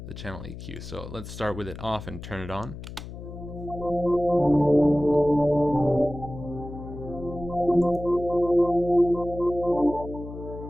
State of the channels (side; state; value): left; noise; hum, 12 dB below the sound